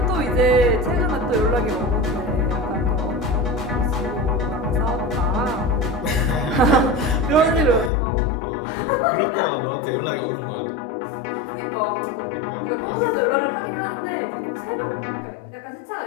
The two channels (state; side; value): drops out; right; at 7.9 s